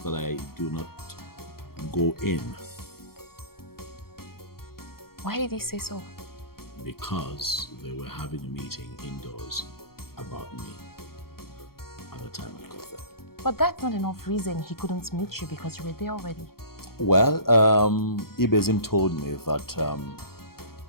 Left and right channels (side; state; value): right; late; 0.94 ms